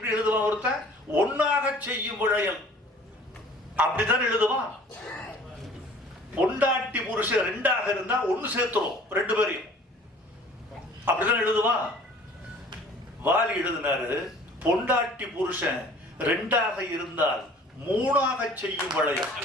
எழுதுவான்? ஒருத்தன் ஒன்னாக செய்யும் வளையல் அப்படித்தான் எழுதுவான். பொண்டாட்டி புருஷன் 2ஆக இருந்தா 1 சேர்த்துரும் 2 பேரையும், அப்படிதான் எழுதுவான். வாலி எழுதினாரு, பொண்டாட்டி புருஷன் 2ஆக இருந்தால் 3ஆக செய்யும் வளையல்.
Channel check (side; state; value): both; normal; correlation 0.50